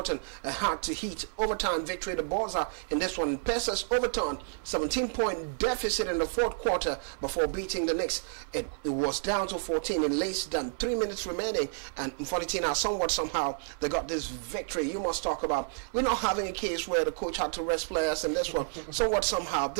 had to heat overtime victory. The balls are in this one. Pacers overturned 17-point deficit in the fourth quarter before beating the Knicks. It was down to 14 in less than 3 minutes remaining, and 14 now somehow they got this victory. You must talk about, we're not having a case where the coach had to rest players in this one. Somehow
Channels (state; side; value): silent; left; digital silence